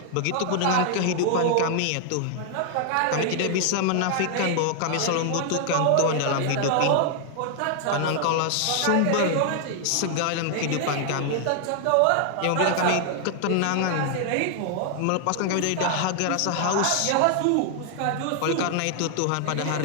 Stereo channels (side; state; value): both; different; correlation 0.00